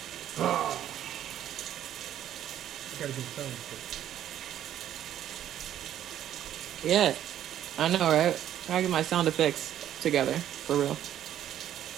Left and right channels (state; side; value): quieter; left; 11.2 dB